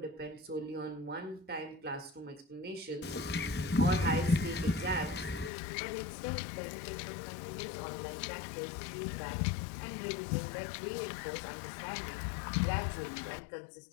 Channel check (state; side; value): drops out; right; at 5.5 s